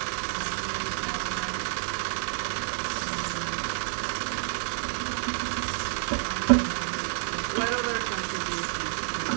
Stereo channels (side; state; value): left; silent; digital silence